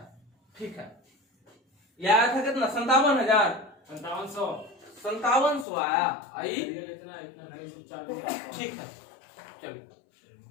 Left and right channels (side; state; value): right; drops out; at 5.7 s